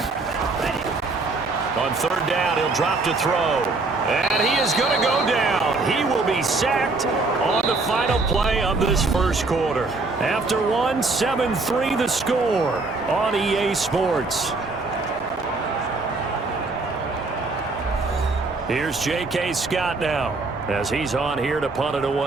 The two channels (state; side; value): quieter; left; 3.6 dB